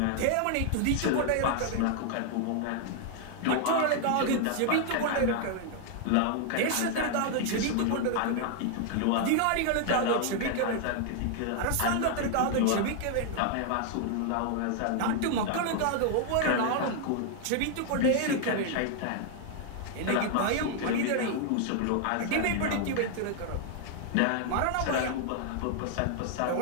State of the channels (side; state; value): both; different; correlation 0.00